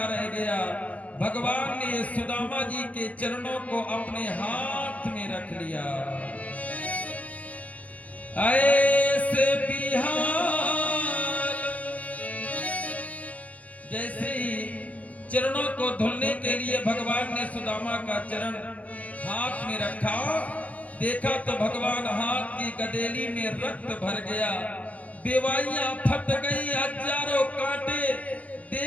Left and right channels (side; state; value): right; late; 0.068 ms